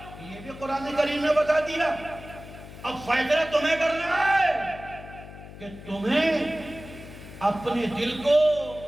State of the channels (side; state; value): left; noise; hum, 15 dB below the sound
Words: یہ بھی قرآن کریم نے بتا دیا۔ اب فیصلہ تمہیں کرنا ہے کہ تمہیں اپنے دل کو